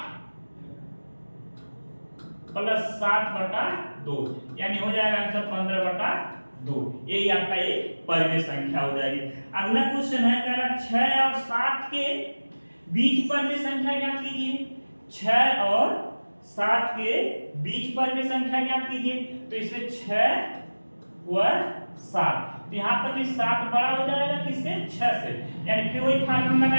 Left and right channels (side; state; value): both; inverted; correlation -1.00